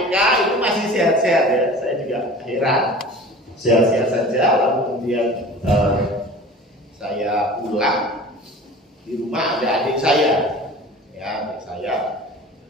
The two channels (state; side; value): normal; both; correlation 0.40